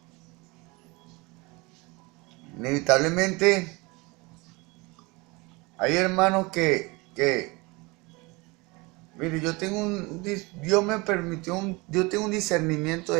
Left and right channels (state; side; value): quieter; left; 25.2 dB